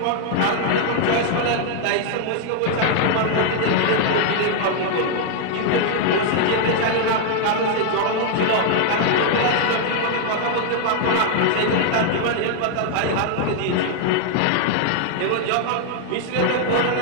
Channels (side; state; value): both; different; correlation 0.00